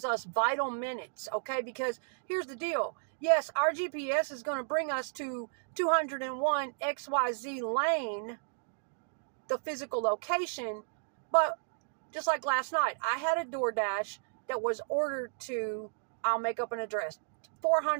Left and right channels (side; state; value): left; silent; digital silence